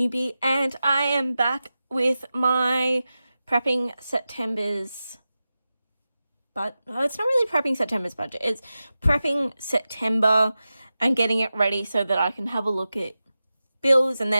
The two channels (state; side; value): inverted; both; correlation -0.94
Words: and I am back with my prepping September's, but it's not really prepping September's budget, it's prepping September and getting it ready so that I can have a look at bills and